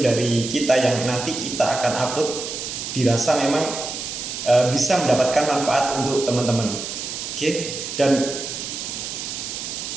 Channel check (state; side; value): noise; right; hiss, 6 dB below the sound